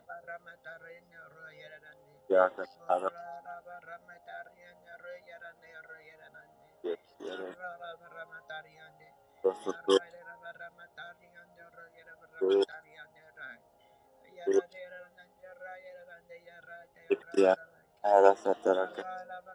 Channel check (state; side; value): identical; both; correlation 1.00